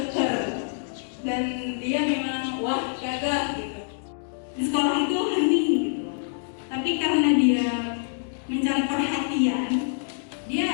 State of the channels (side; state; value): right; silent; digital silence